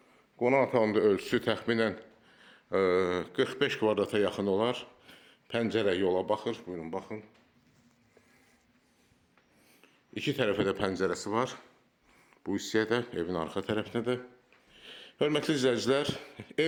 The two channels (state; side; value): identical; both; correlation 1.00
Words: Qonaq otağında ölçüsü təxminən 45 kvadrata yaxın olar. Pəncərə yola baxır. Buyurun, baxın. İki tərəfə də pəncərəsi var. Bu hissəyə də, evin arxa tərəfinə də. Hörmətli izləyicilər,